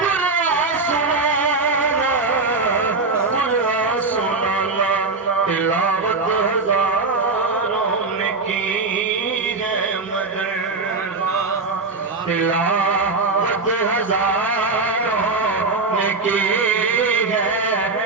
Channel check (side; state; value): left; quieter; 3.8 dB